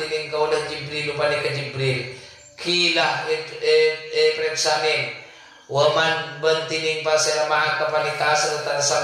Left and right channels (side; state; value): both; identical; correlation 1.00